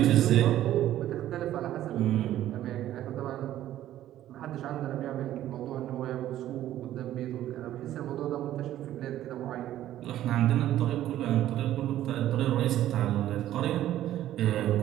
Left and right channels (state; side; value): quieter; left; 12.9 dB